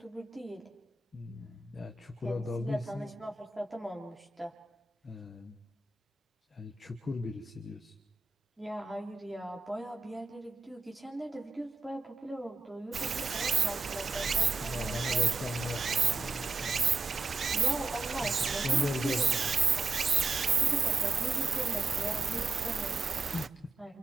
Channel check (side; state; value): left; quieter; 4.0 dB